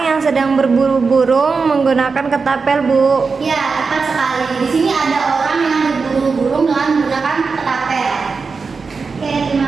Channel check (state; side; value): quieter; left; 4.7 dB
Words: yang sedang berburu burung menggunakan ketapel Bu. Ya, tepat sekali. Di sini ada orang yang berburu burung dengan menggunakan ketapel. Oke, terima